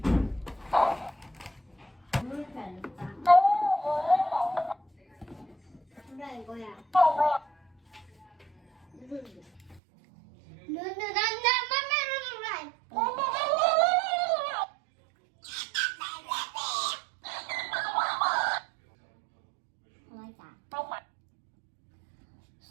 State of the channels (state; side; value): drops out; left; at 9.8 s